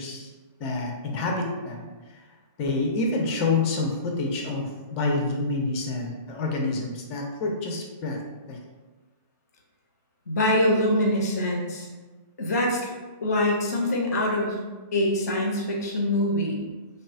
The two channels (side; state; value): both; inverted; correlation -0.38